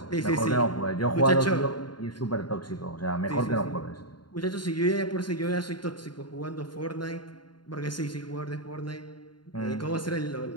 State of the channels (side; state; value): right; late; 0.71 ms